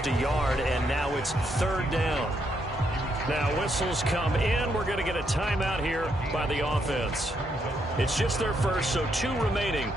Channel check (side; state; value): both; normal; correlation 0.77